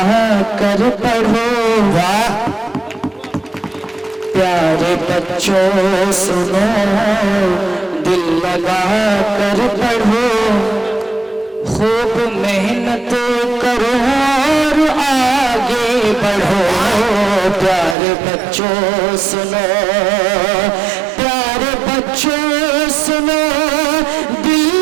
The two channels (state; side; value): drops out; left; at 17.9 s